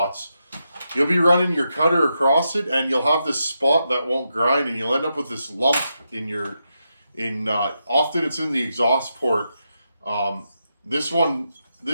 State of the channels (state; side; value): inverted; both; correlation -0.85